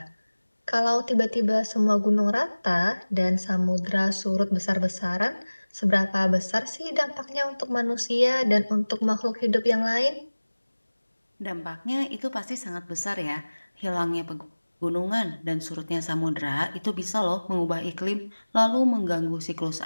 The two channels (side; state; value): both; inverted; correlation -1.00